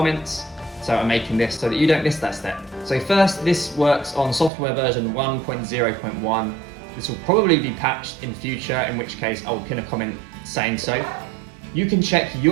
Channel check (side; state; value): left; drops out; at 4.5 s